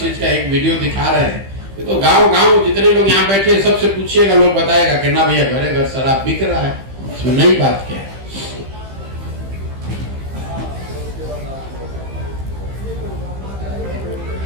का एक वीडियो दिखा रहे हैं। ये तो गांव जितने लोग यहाँ बैठे हैं सबसे पूछिएगा, लोग बताएगा कि ना भैया घरे घर शराब बिक रहा है। इसमें नई बात क्या है?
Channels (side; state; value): left; late; 15 ms